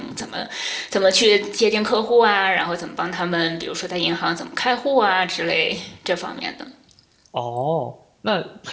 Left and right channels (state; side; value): identical; both; correlation 1.00